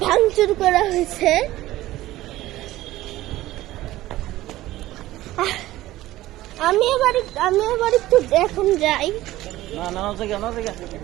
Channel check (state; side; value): quieter; left; 16.1 dB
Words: ভাঙচুর করা হয়েছে। আমি এবার একটু এখন যাই।